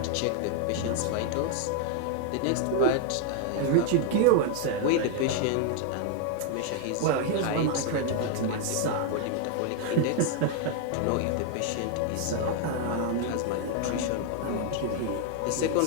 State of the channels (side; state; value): both; different; correlation 0.00